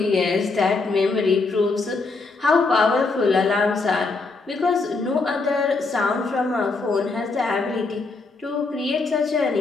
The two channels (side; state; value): right; quieter; 3.9 dB